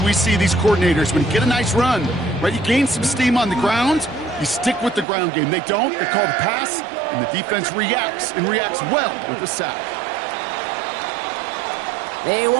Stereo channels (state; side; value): drops out; left; at 5.1 s